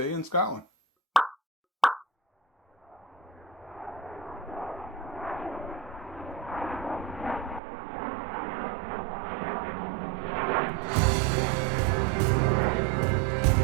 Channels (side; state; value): left; drops out; at 7.6 s